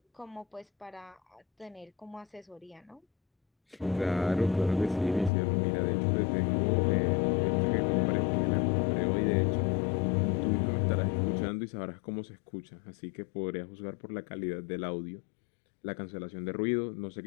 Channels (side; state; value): right; drops out; at 5.3 s